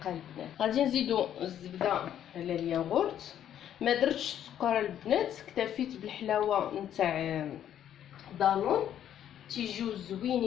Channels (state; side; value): quieter; right; 10.4 dB